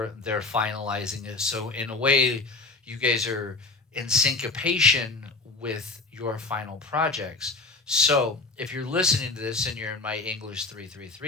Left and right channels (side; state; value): right; quieter; 3.6 dB